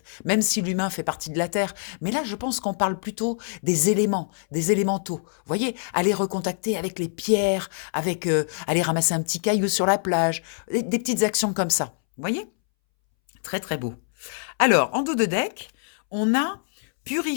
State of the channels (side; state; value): right; silent; 62 dB below the other